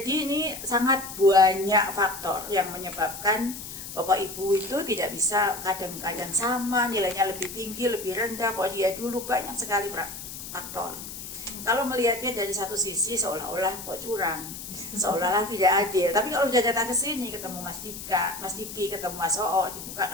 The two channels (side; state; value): left; noise; hiss, 10 dB below the sound